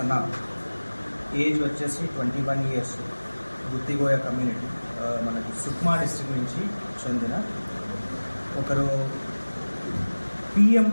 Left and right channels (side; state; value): both; inverted; correlation -1.00